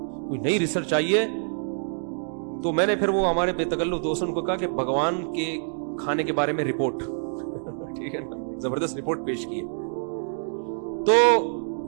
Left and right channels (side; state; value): left; silent; digital silence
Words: कोई नई रिसर्च आई है। तो मैंने फिर वो हमारे बेतकल्लुफ दोस्तों को कहा कि भगवान के खाने के बारे में रिपोर्ट ठीक है ना, जबरदस्त रिपोर्ट पेश की है। तो